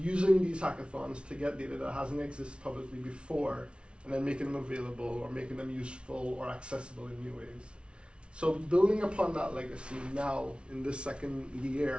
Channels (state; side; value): late; left; 0.058 ms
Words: these hackathons to get data that hasn't existed publicly before, and then making them available or making them useful or accessible in new ways. So building upon that legacy now in this second